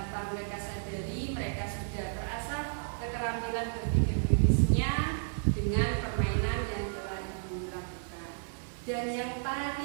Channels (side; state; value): left; silent; digital silence